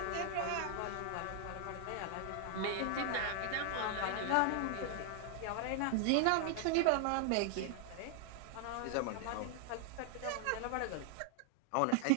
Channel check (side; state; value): both; different; correlation 0.00